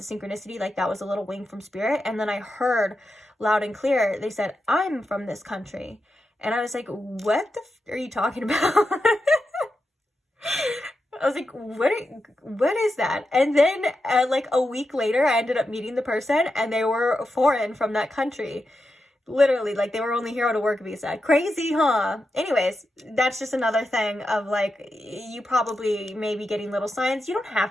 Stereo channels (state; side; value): normal; both; correlation 0.88